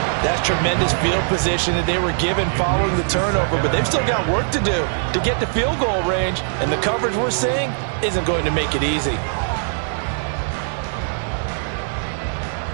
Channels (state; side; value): silent; left; digital silence